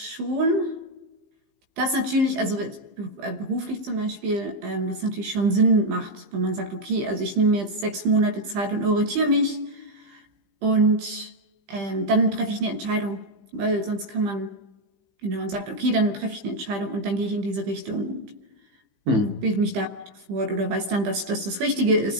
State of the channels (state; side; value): late; left; 15 ms